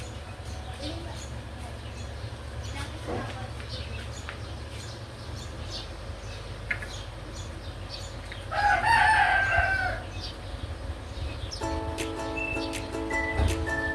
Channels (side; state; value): both; identical; correlation 1.00